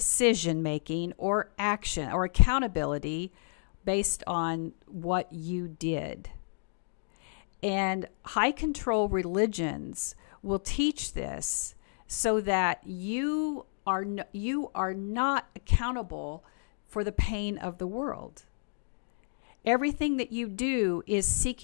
making or action or accountability based on what you did. And high control religions will teach this so that you are not accountable for the pain of the world. Everything that you do is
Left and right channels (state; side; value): silent; right; digital silence